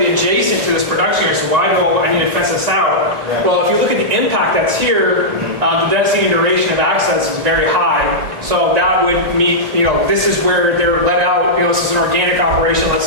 adjacent to this production area. So why do I need to fence this out? Right. Well, if you look at the impact that's here, the density and duration of access is very high. So that would mean, this is where they're let out. This is an organic operation, let's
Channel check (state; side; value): late; left; 1.9 ms